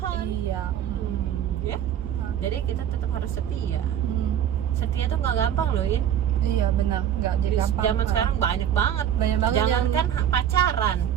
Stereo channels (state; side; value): quieter; left; 10.0 dB